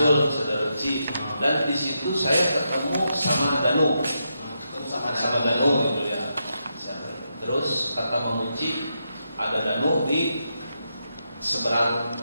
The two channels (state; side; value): inverted; both; correlation -0.84